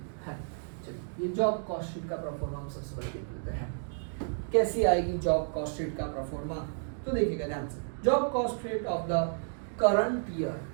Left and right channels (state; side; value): silent; left; digital silence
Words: है। चलिए ये जॉब कॉस्ट शीट का प्रोफॉर्मा हम सबसे पहले देख लेते हैं, कैसी आएगी जॉब कॉस्ट शीट का प्रोफॉर्मा। तो देखिएगा ध्यान से, job cost sheet of the current year,